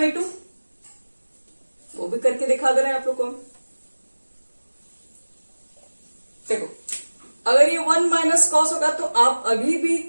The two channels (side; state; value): both; inverted; correlation -1.00